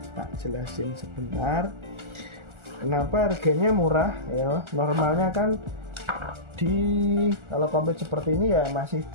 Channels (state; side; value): late; left; 1.4 ms